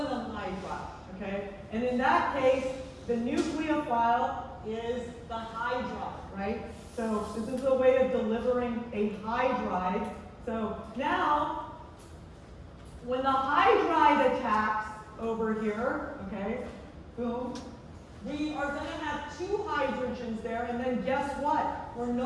hydride. Okay, and in that case, the nucleophile is the hydride, right? So this is a way of delivering a hydride. So now, when the hydride attacks over here, okay, boom, we are going to have two hydrogens there, and then guess what? We're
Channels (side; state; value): both; identical; correlation 1.00